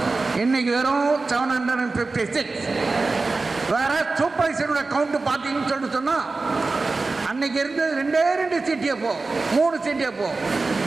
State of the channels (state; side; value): quieter; left; 3.7 dB